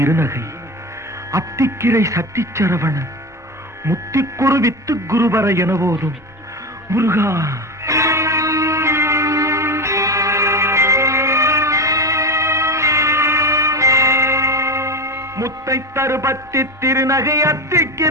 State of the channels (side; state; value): both; normal; correlation 0.20